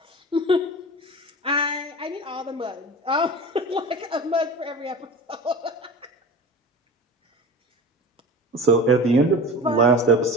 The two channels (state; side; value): normal; both; correlation 0.34